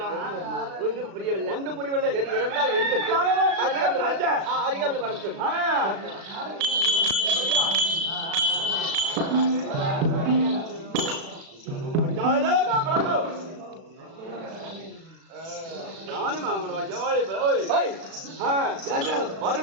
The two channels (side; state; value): left; late; 36 ms